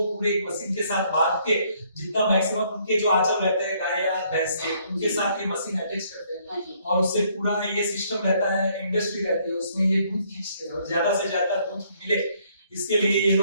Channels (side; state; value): both; inverted; correlation -0.67